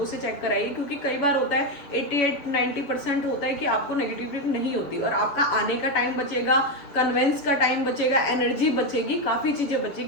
से चेक कराइए, क्योंकि कई बार होता है 88-90% होता है कि आपको नेगेटिविटी नहीं होती, और आपका आने का टाइम बचेगा, कन्वेंस का टाइम बचेगा, एनर्जी बचेगी, काफ़ी चीज़ें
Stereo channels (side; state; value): right; late; 7.3 ms